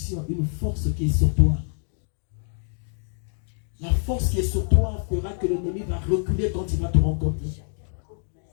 une force qui est sur toi. La force qui est sur toi fera que l'ennemi va reculer quand il va te rencontrer.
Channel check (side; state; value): right; silent; digital silence